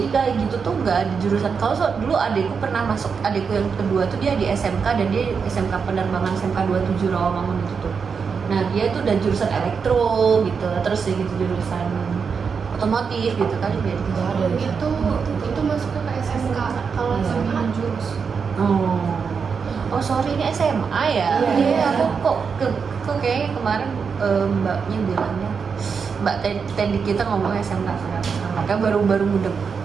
kayak gitu tuh nggak ada jurusan. Kalau dulu adikku pernah masuk, adikku yang kedua tuh dia di SMK dan dia SMK penerbangan SMK 27 Rawamangun itu tuh. Nah dia tuh udah jurusan elektro gitu, terus ya gitu jurusan otomotif gitu kan dia gitu. Itu masuk ke SMK kalau SMK jurus. Oh sorry, ini SMA ya. Iya, aku kok kayaknya kemarin mbaknya bilangnya, Mbak Teddy kita ngomongnya SMK sekarang. Makanya baru mudeng.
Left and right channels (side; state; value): left; quieter; 5.9 dB